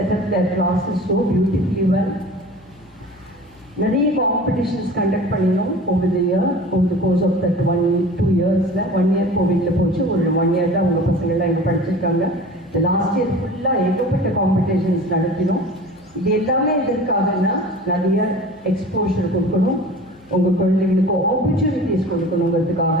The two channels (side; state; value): left; noise; hum, 29 dB below the sound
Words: up their classes so beautifully well. நிறைய காம்படிஷன்ஸ் கண்டக்ட் பண்ணினோம் over the year, over the course of that 2 yearsல. 1 year கோவிட்ல போச்சு, ஒரு 1 year தான் அவங்க பசங்கள்லாம் இங்கே படிச்சிருக்காங்க. இந்த லாஸ்ட் இயர் ஃபுல்லாக ஏகப்பட்ட காம்படிஷன்ஸ் நடத்தினோம். இது எல்லாமே எதற்காகனா நிறைய எக்ஸ்போஷர் கொடுக்கணும், உங்கள் குழந்தைங்களுக்கு ஆப்பர்ச்சுனிட்டிஸ்